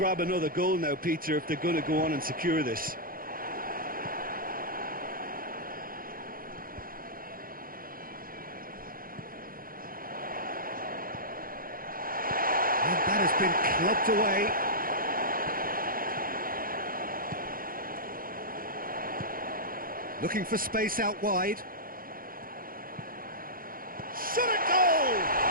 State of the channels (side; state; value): left; late; 0.42 ms